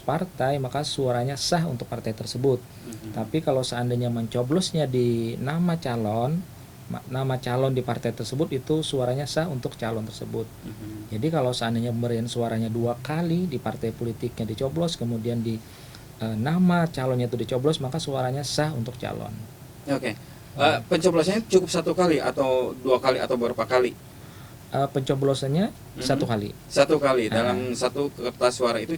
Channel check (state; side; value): identical; both; correlation 1.00